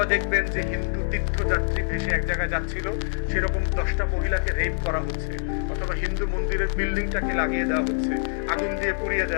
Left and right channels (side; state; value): right; silent; 60 dB below the other